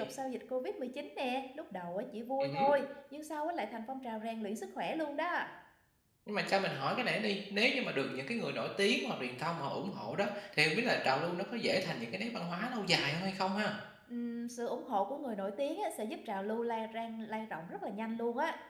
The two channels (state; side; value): identical; both; correlation 1.00